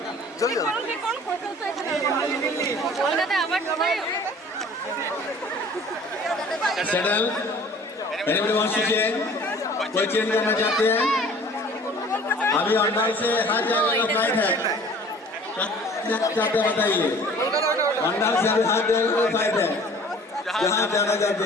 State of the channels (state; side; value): normal; both; correlation 0.49